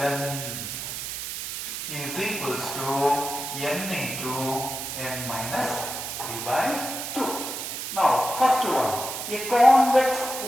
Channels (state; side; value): noise; right; hiss, 6 dB below the sound